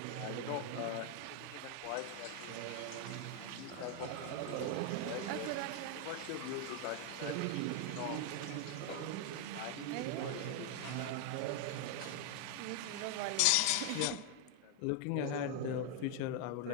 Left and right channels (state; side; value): different; both; correlation 0.01